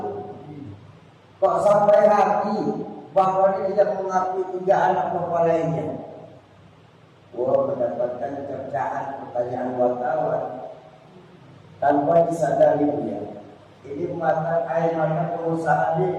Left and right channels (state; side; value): identical; both; correlation 1.00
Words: Kok sampai hati Bapak ini tidak mengakui 3 anak Bapak lainnya? Mendapatkan cercaan pertanyaan wartawan tanpa disadari dia. Ini air mata pengusaha